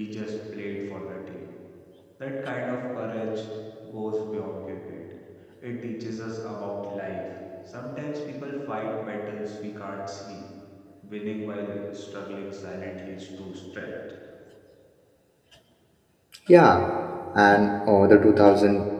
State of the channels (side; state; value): both; identical; correlation 1.00